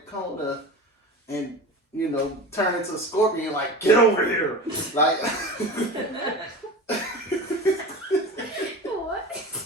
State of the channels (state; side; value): normal; both; correlation 0.31